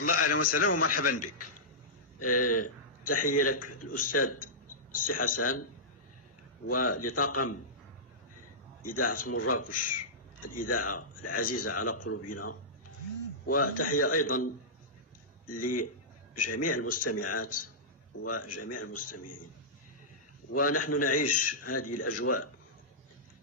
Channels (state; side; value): normal; both; correlation -0.14